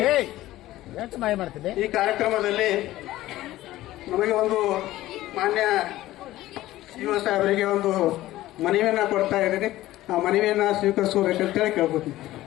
ಈ ಕಾರ್ಯಕ್ರಮದಲ್ಲಿ ನಮಗೆ ಒಂದು ಮಾನ್ಯ ಯುವ ಸಾಹೇಬರಿಗೆ ಒಂದು ಮನವಿಯನ್ನು ಕೊಡ್ತಾ ಇದ್ದೀನಿ. ಆ ಮನವಿಯನ್ನು ಸ್ವೀಕರಿಸಬೇಕಂತೇಳಿ ಕೇಳ್ಕೊತೀನಿ.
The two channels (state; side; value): quieter; right; 15.8 dB